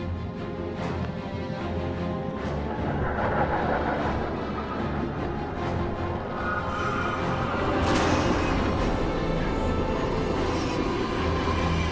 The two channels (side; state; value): both; identical; correlation 1.00